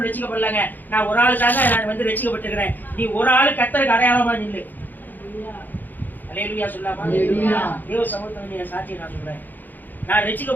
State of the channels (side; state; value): right; late; 0.087 ms